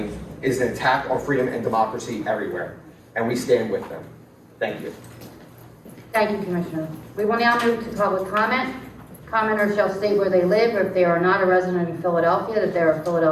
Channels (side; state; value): both; identical; correlation 1.00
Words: is an attack on freedom and democracy everywhere, and we stand with them. Thank you. Thank you, Commissioner. We will now move to public comment. Commenters shall state where they live, or if they are not a resident of Philadelphia, that they are a